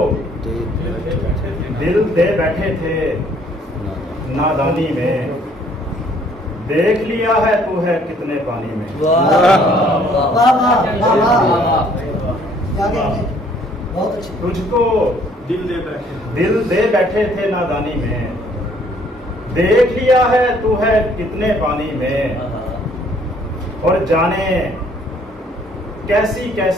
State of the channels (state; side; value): normal; both; correlation 0.61